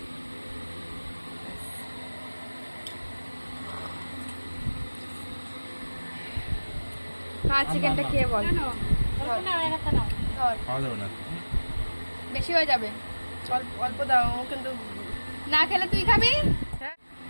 চিকেনটা খেয়ে বল। বেশি হয়ে যাবে, অল্প দাও, কিন্তু না খেলে তুই খাবি।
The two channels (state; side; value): inverted; both; correlation -1.00